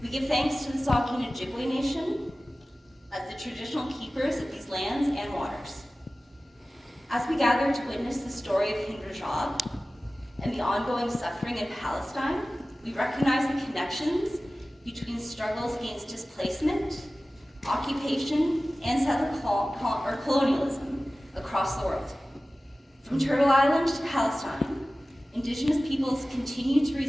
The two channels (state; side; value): normal; both; correlation 0.96